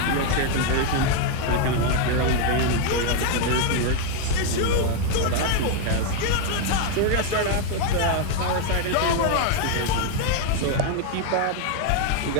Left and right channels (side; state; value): both; different; correlation 0.01